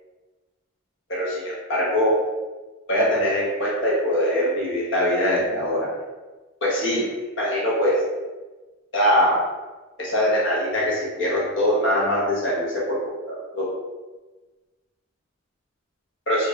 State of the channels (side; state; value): both; normal; correlation 0.01